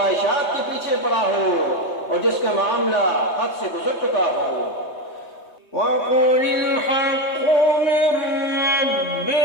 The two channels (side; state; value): right; late; 3.2 ms